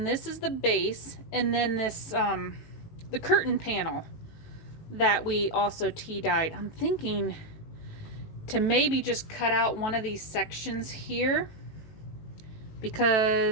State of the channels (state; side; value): late; right; 18 ms